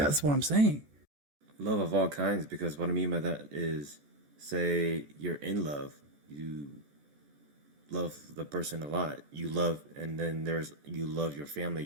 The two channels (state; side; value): late; left; 14 ms